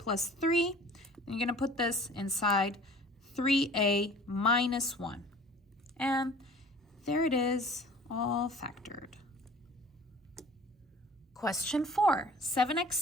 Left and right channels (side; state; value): both; normal; correlation 0.46